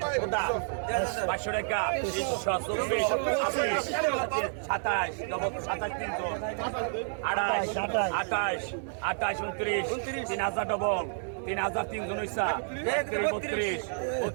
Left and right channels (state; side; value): silent; left; digital silence